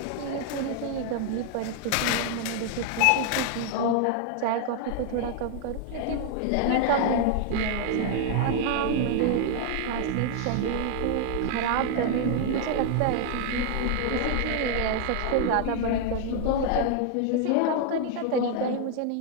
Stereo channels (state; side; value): different; both; correlation 0.00